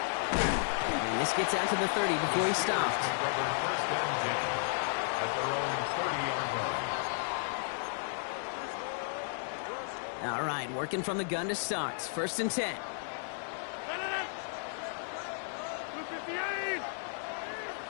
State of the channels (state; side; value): silent; right; digital silence